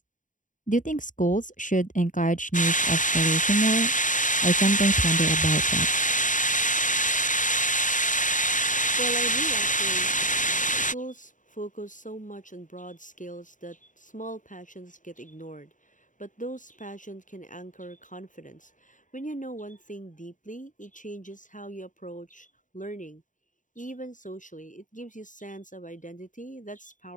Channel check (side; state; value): right; late; 0.37 ms